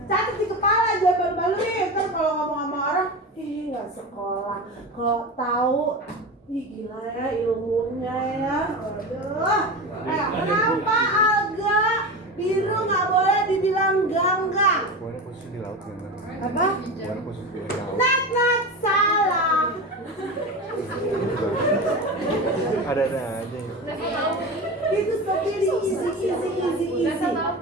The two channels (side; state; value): both; normal; correlation 0.25